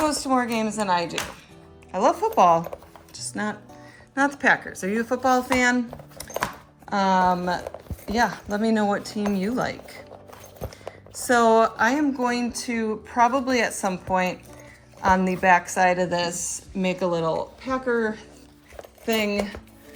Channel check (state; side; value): identical; both; correlation 1.00